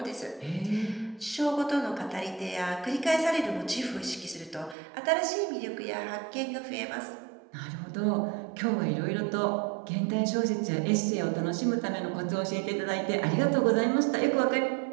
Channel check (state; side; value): drops out; left; at 4.8 s